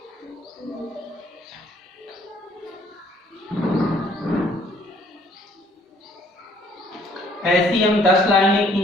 ऐसी हम 10 लाइनें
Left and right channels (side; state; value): both; normal; correlation 0.62